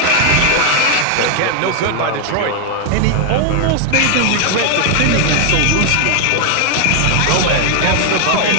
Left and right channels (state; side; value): different; both; correlation 0.00